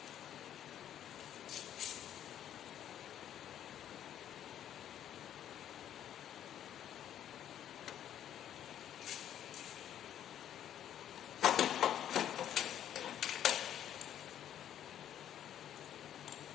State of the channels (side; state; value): right; quieter; 10.6 dB